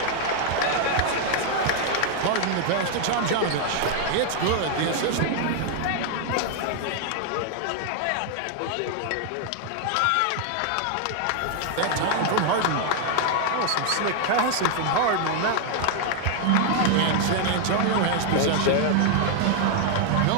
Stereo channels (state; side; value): different; both; correlation 0.00